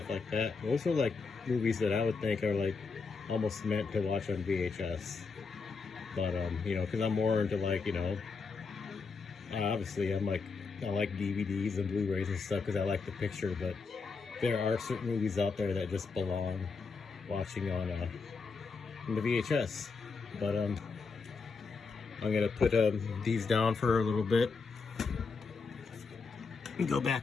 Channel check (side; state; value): right; quieter; 4.7 dB